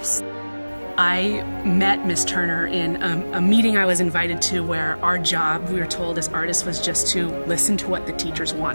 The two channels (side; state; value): both; inverted; correlation -1.00